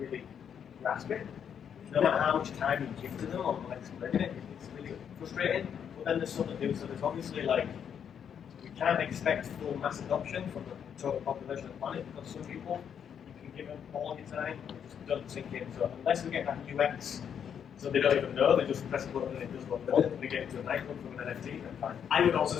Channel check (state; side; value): quieter; right; 8.1 dB